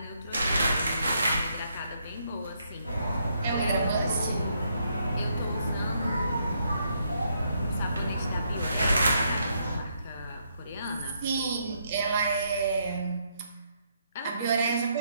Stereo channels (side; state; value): both; inverted; correlation -0.75